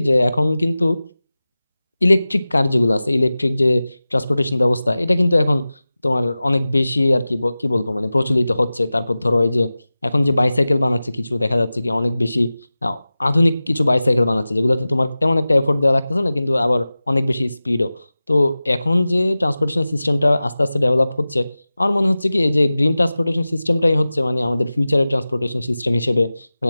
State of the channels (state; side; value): inverted; both; correlation -0.96